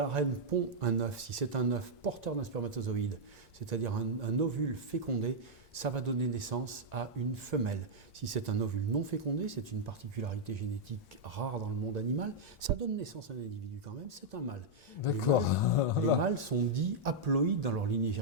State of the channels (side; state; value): both; normal; correlation -0.04